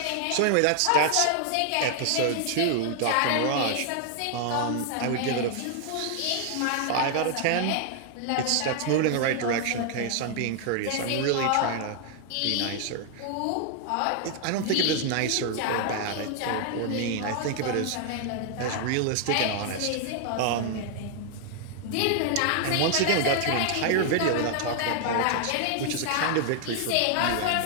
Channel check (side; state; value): both; different; correlation 0.00